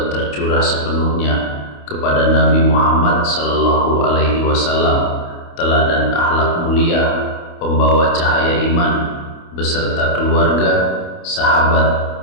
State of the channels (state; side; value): late; right; 29 ms